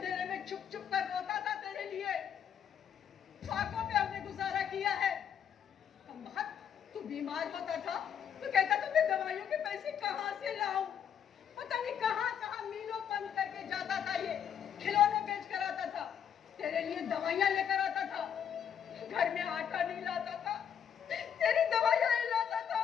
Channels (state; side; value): quieter; right; 8.5 dB